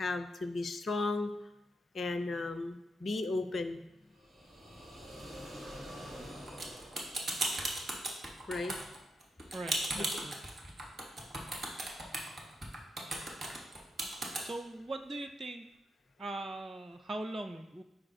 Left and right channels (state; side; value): normal; both; correlation 0.82